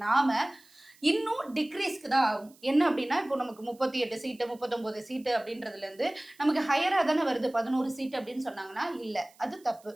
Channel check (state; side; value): noise; right; hiss, 28 dB below the sound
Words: நாம, இன்னும் டிக்ரீஸ்க்கு தான் ஆகும். என்ன அப்டின்னா, இப்போ நமக்கு 38 சீட்டு, 39 சீட்டு அப்டின்றதுலேருந்து நமக்கு ஹையரா தானே வருது 11 சீட்டு அப்டின்னு சொன்னாங்கன்னா, இல்ல. அது தப்பு.